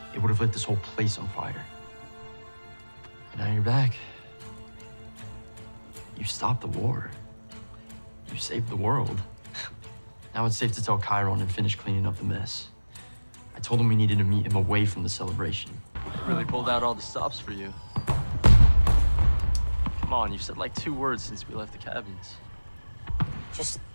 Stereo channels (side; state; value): both; inverted; correlation -1.00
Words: it would have lit this whole place on fire. But now you're back. You stopped the war. You saved the world. Now it's safe to tell Chiron and finish cleaning up the mess. I told him we needed to meet him away from the celebration. Really pulled out all the stops for you. Come on, you've said like 2 words since we left the cabins. Just